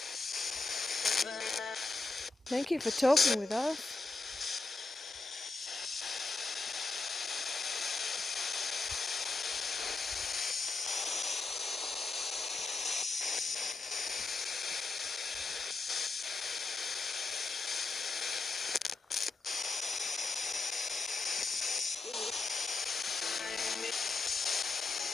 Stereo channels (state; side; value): quieter; right; 3.7 dB